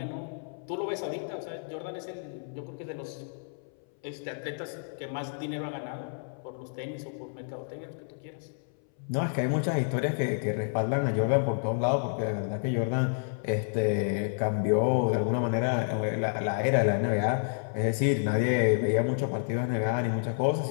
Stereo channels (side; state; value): right; silent; 58 dB below the other